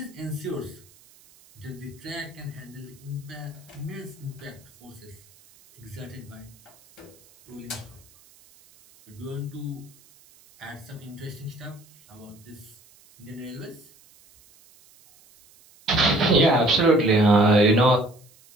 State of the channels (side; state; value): right; noise; hiss, 27 dB below the sound